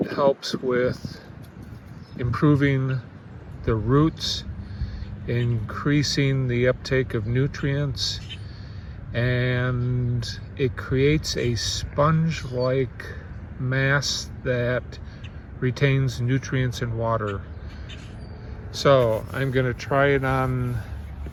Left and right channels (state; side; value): identical; both; correlation 1.00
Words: helps with improving the roots, increasing the uptake of nutrients, and it creates a sponge-like mass that retains nutrients and water. So I'm going to try it on,